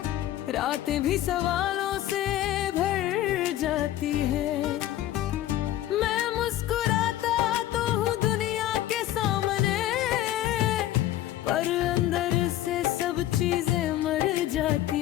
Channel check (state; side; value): quieter; right; 13.5 dB